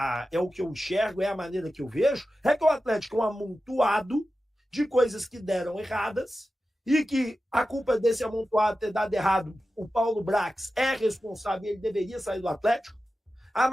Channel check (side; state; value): both; normal; correlation 0.93